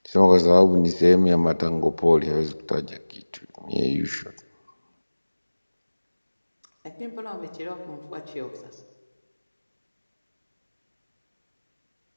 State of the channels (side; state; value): both; inverted; correlation -1.00